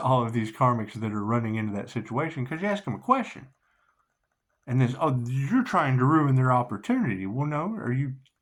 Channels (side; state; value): both; identical; correlation 1.00